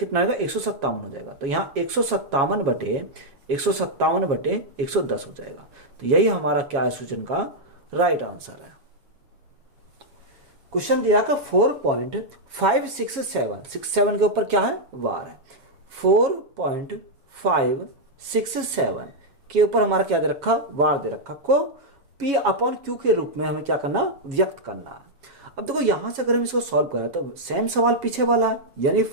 आएगा, 157 हो जाएगा। तो यहाँ 157 बटे 110 हो जाएगा। तो यही हमारा क्या है, सूचन का राइट आंसर है। क्वेश्चन दिया का 4.567 के ऊपर क्या है, वार है। 4.567 के ऊपर हमारा क्या दे रखा, वार दे रखा, को P अपॉन Q के रूप में हमें क्या करना, व्यक्त करना है। अब देखो यहां से अगर हम इसको सॉल्व करें तो सेम सवाल पीछे वाला है, यानी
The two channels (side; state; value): left; late; 7.4 ms